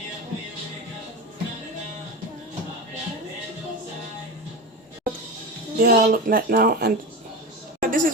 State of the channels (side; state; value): both; normal; correlation 0.24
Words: They all look like now, and this